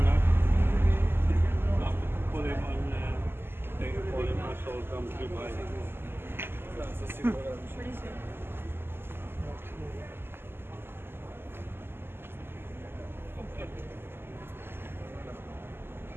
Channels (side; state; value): left; late; 0.11 ms